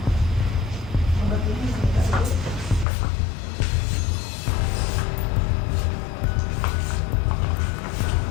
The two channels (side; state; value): right; drops out; at 2.9 s